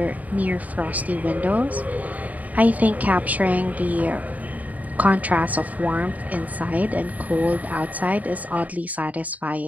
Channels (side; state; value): left; late; 0.074 ms